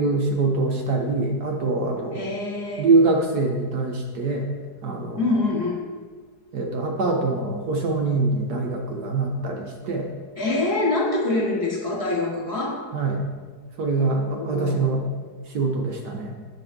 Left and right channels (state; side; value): late; left; 4.7 ms